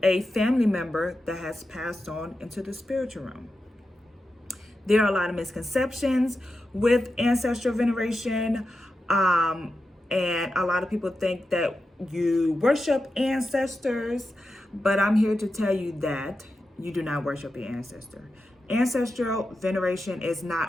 a family member that has passed on into the spiritual realm. There are a lot of misconceptions with ancestral veneration, and a lot of people think that you worship ancestors, but I'm here to tell you that you do not worship your ancestor. Ancestral veneration is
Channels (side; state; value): both; normal; correlation 0.90